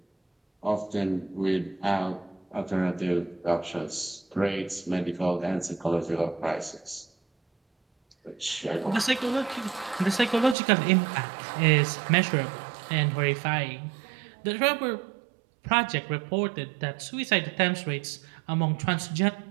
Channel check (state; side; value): drops out; left; at 10.6 s